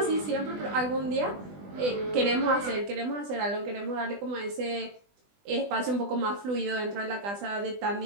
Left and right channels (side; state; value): left; late; 20 ms